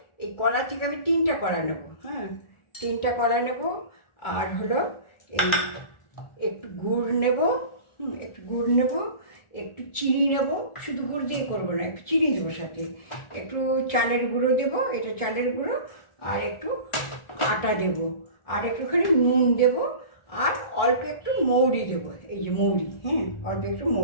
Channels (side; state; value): right; late; 1.4 ms